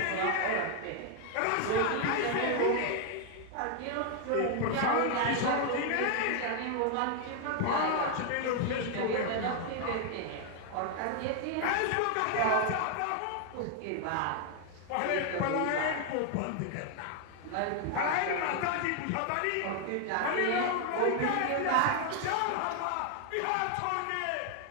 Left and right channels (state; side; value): different; both; correlation 0.00